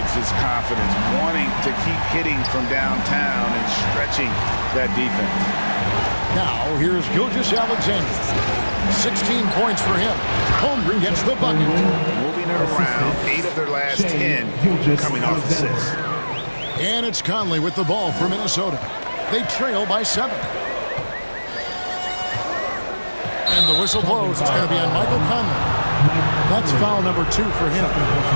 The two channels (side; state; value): both; inverted; correlation -1.00